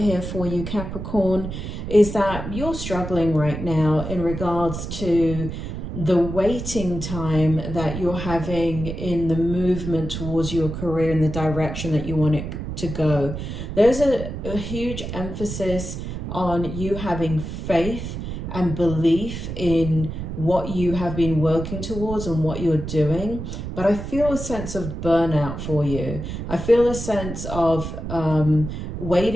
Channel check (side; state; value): right; noise; rumble, 6 dB below the sound